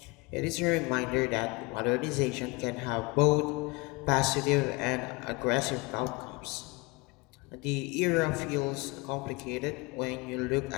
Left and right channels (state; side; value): quieter; right; 25.7 dB